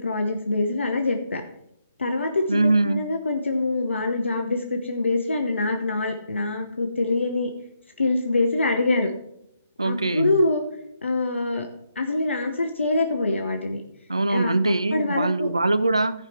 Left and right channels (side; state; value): both; inverted; correlation -0.80